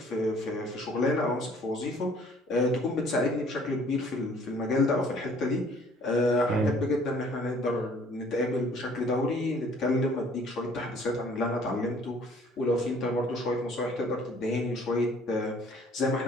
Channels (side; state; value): both; normal; correlation 0.57